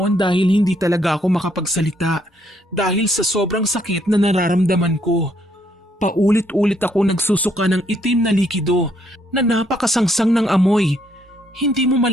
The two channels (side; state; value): both; normal; correlation 0.71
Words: dahil hindi talaga ako makapagsalita dahil sa sobrang sakit na nararamdaman ko. Paulit-ulit ako nagsusuka ng itim na likido na napakasangsang ng amoy. Hindi mo